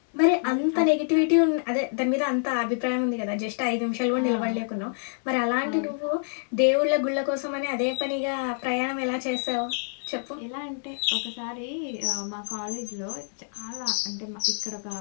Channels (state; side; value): silent; right; digital silence